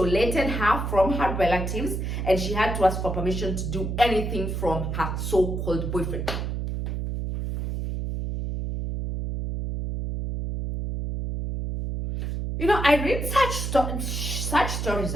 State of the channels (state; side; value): noise; right; hum, 3 dB below the sound